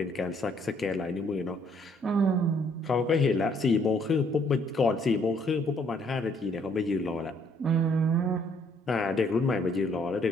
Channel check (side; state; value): both; normal; correlation 0.65